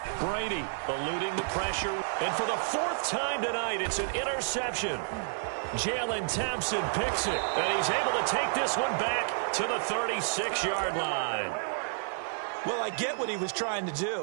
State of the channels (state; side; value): silent; left; digital silence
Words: Brady eluding the pressure. And for the 4th time tonight, it's an interception. Jalen Thompson picks it, and he's able to take this one back to the 36-yard line. Well, I get what he was trying to